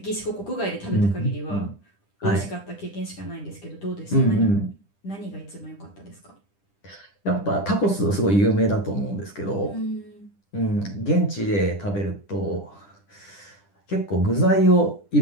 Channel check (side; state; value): right; late; 10 ms